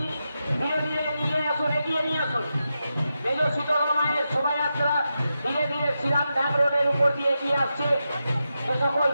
ধীরে ধীরে নিয়ে আসুন, এগিয়ে নিয়ে আসুন। মেজ শীতলা মায়ের শোভাযাত্রা ধীরে ধীরে শ্রীরাম ধাম রোডের উপর দিয়ে এগিয়ে আসছে। যে সকল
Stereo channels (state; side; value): inverted; both; correlation -0.89